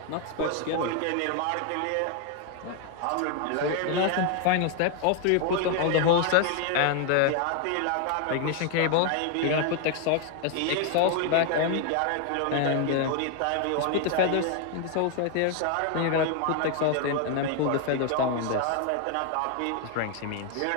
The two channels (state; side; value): different; both; correlation 0.01